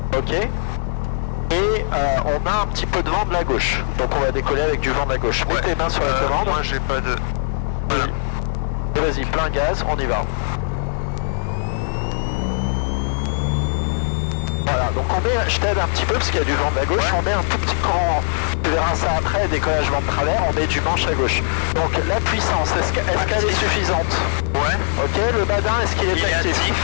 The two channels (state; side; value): silent; right; 66 dB below the other